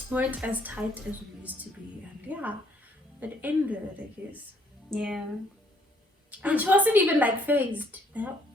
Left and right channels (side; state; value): both; normal; correlation 0.65